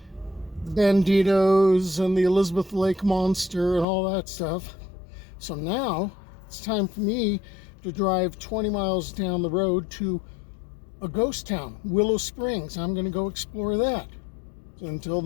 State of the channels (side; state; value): right; drops out; at 3.9 s